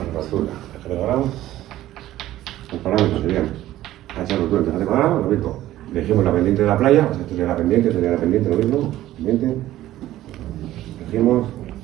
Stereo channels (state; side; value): quieter; left; 14.3 dB